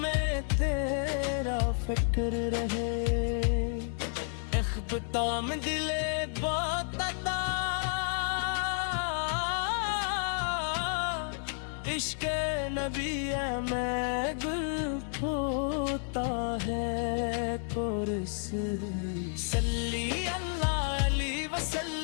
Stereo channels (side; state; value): right; silent; 57 dB below the other